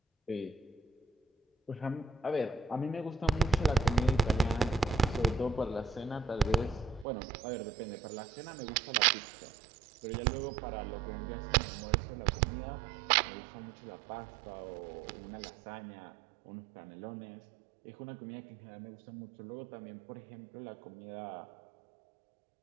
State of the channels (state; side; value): drops out; left; at 7.1 s